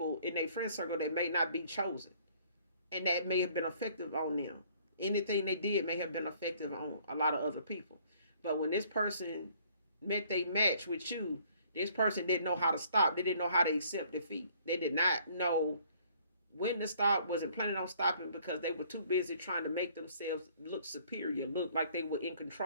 in their friend circle that may not be chosen, and that may have been effective on them. Anything they did may have been effective on a lot of other people. But when this person met they match with you, this person didn't know how to stop. They didn't know how to accept defeat. They did not know when to stop, wasn't planning on stopping because they were too busy trying to make themselves look superior, look like they were in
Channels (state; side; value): inverted; both; correlation -0.60